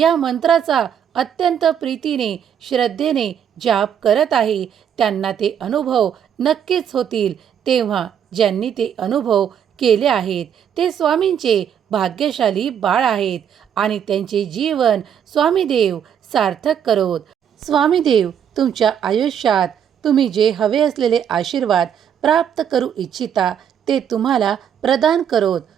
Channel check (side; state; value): left; quieter; 8.6 dB